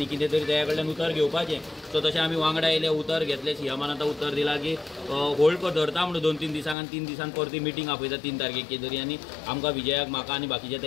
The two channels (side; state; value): right; drops out; at 6.8 s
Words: कितें तरी तेच्या कडल्यान उतर घेवपाचें. सो तशें आमी वांगडा येयले, उतर घेतलें. सीएमान आतां उतर दिलां की होल्ड धरता म्हणून 2-3 दिसांक आनी 3 दिसान परती मिटींग आपयता 3 तारखेक कितें तरी. आनी आमकां विजयाक, म्हाका आनी बाकीचे